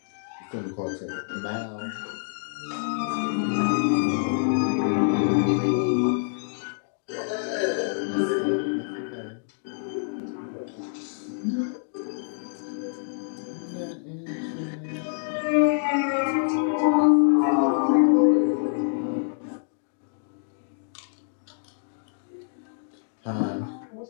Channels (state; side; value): silent; right; digital silence